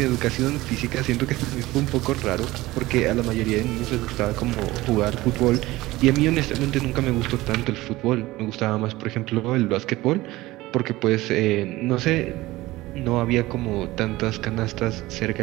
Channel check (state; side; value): quieter; left; 18.5 dB